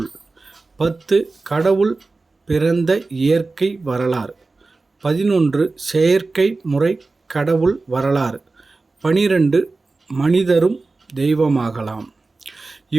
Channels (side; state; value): left; quieter; 3.6 dB